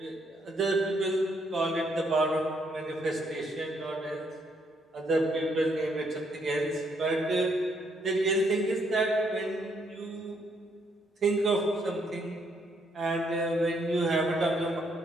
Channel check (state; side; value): normal; both; correlation 0.72